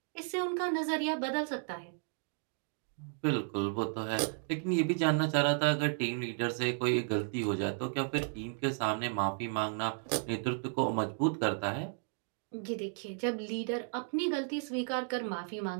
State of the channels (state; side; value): silent; left; 55 dB below the other